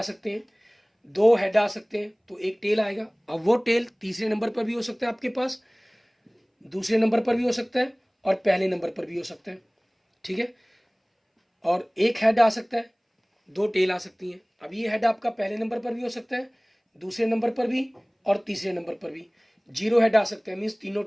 सकते हैं, 2 हेड आ सकते हैं, तो एक टेल आएगा। अब वो टेल तीसरे नंबर पर भी हो सकता है आपके पास, दूसरे नंबर पर भी हो सकता है, और पहले नंबर पर भी हो सकता है। ठीक है, और एक हेड आ सकता है, 2 टेल आ सकती हैं। अब ये हेड आपका पहले नंबर पर भी हो सकता है, दूसरे नंबर पर भी और तीसरे नंबर पर भी। जीरो हेड आ सकते हैं, मीन्स तीनों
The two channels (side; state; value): both; identical; correlation 1.00